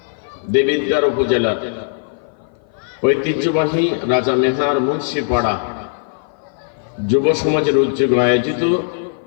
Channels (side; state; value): right; silent; 56 dB below the other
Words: দেবিদ্বার উপজেলা ঐতিহ্যবাহী রাজা মেহার মুন্সিপাড়া যুব সমাজের উদ্যোগে আয়োজিত